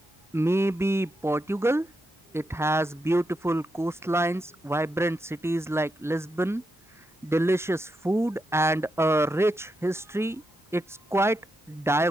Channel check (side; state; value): both; normal; correlation 0.85